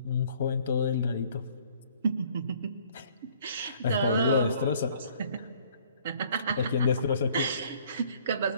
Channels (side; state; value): both; inverted; correlation -0.58